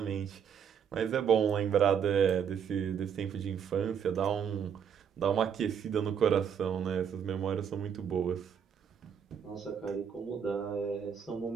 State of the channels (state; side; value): quieter; left; 7.7 dB